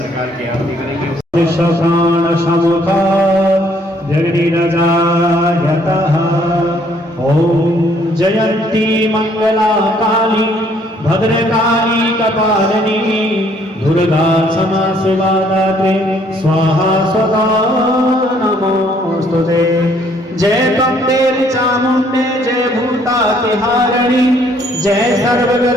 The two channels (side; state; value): both; normal; correlation 0.64